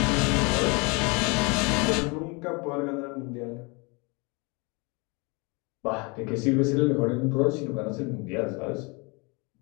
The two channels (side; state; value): right; quieter; 29.5 dB